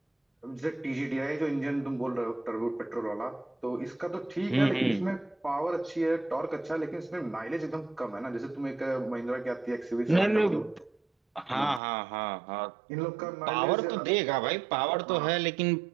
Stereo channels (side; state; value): left; drops out; at 11.8 s